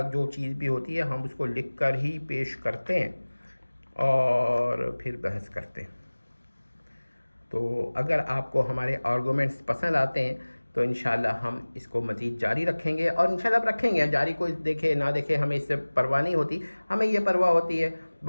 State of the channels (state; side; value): inverted; both; correlation -1.00